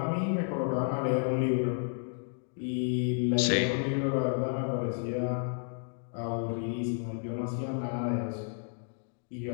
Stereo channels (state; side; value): silent; right; 57 dB below the other